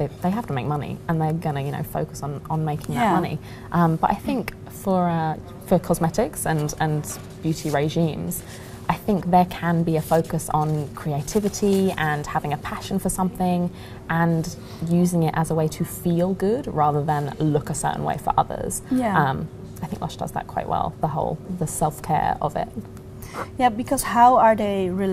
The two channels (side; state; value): both; identical; correlation 1.00